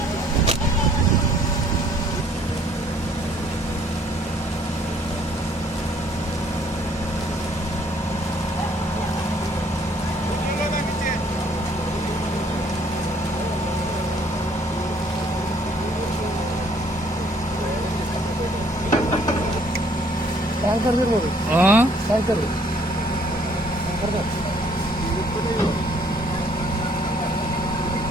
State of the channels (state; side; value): normal; both; correlation 0.62